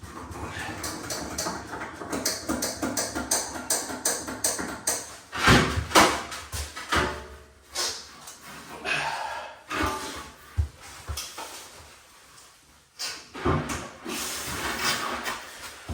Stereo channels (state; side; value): identical; both; correlation 1.00